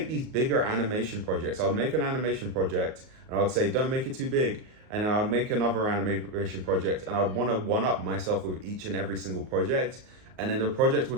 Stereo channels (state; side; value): late; left; 38 ms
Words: these bigger animation projects. I would make an animation project and I would say, don't make it too big. And then I would make another animation project and I'd want to one-up myself with each and every single project. And then the project